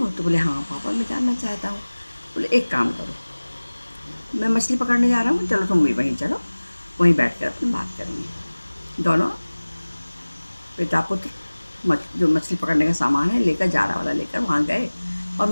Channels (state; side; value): inverted; both; correlation -1.00